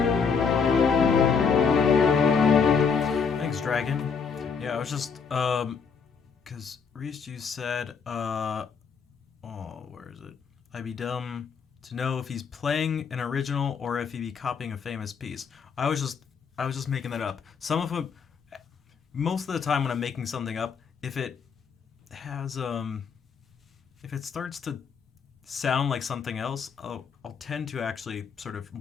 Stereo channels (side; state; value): right; quieter; 5.9 dB